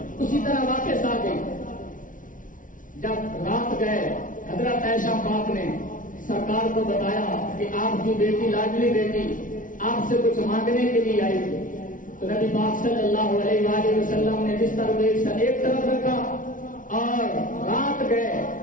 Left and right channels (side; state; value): right; late; 0.38 ms